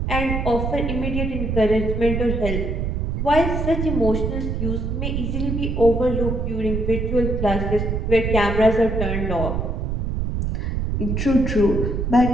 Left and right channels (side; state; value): right; noise; rumble, 1 dB below the sound